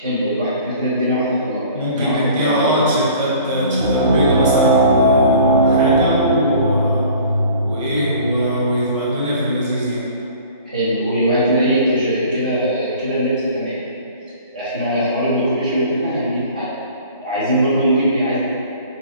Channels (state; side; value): inverted; both; correlation -0.47